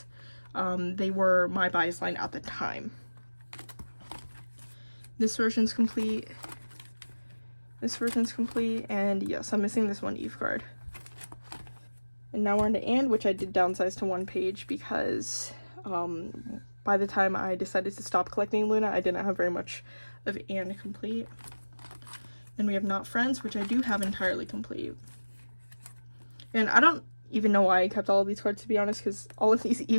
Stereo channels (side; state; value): both; inverted; correlation -1.00